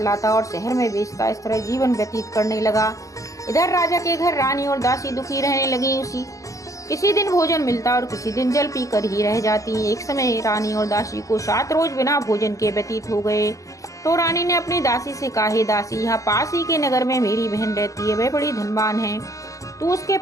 लाता और शहर में बेचता। इस तरह जीवन व्यतीत करने लगा। इधर राजा के घर रानी और दासी दुखी रहने लगी। किसी दिन भोजन मिलता और किसी दिन जल पी कर ही रह जाती। एक समय रानी और दासी को 7 रोज बिना भोजन के व्यतीत हो गए तो रानी ने अपनी दासी से कहा, हे दासी, यहाँ पास ही के नगर में मेरी बहन रहती है। वह बड़ी धनवान है। तू उसके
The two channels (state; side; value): late; right; 0.16 ms